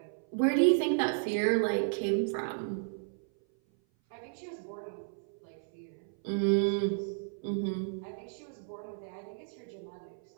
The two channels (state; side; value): silent; left; 56 dB below the other